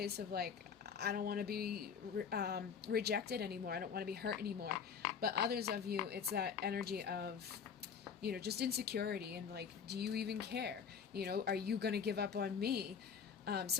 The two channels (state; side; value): quieter; right; 6.7 dB